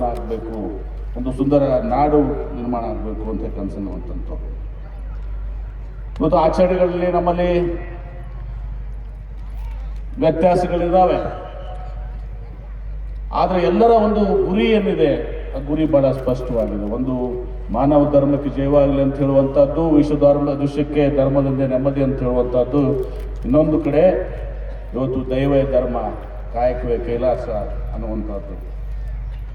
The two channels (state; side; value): identical; both; correlation 1.00